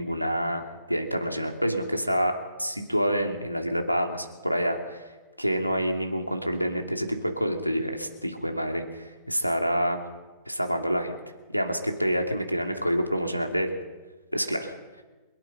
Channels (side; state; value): both; inverted; correlation -0.88